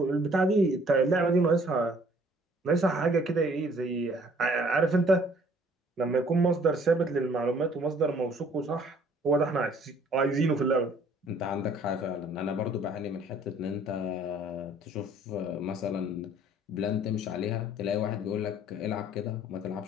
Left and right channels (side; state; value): both; normal; correlation 0.57